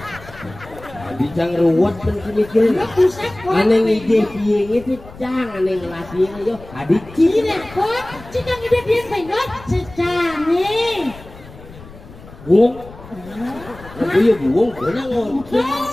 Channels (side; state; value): left; noise; rumble, 19 dB below the sound